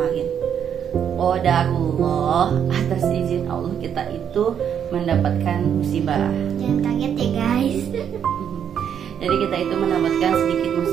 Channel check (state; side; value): quieter; left; 8.5 dB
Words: Qadarullah, atas izin Allah kita itu mendapatkan musibah. Jangan kaget ya guys. Jadi kita itu mendapatkan sedikit